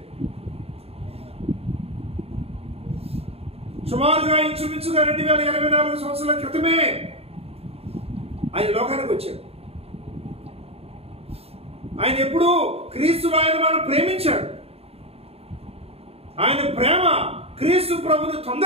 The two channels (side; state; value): left; late; 0.29 ms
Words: సుమారుగా ఇంచుమించుగా 2024 సంవత్సరాల క్రితమే ఆయన లోకానికి వచ్చాడు. ఆయన ఎప్పుడు క్రీస్తులో ఆయన మనం ప్రేమించాడు. ఆయన ప్రేమ క్రీస్తు ప్రభుని